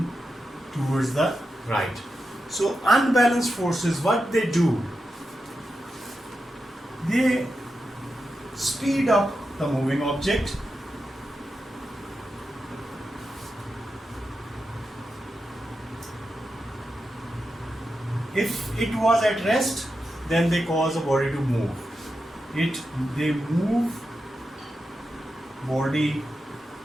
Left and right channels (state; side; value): normal; both; correlation 0.89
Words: towards the right. So unbalanced forces, what they do? They speed up the moving object. If it was at rest, then they cause a body to move. They move body